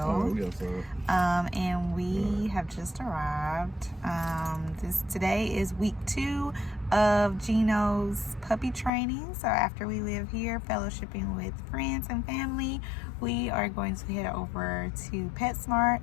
and we have just arrived. Today is week 2 of GENO'S puppy training. So after we live here fellowshipping with friends and family, we are going to head over to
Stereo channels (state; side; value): drops out; right; at 8.9 s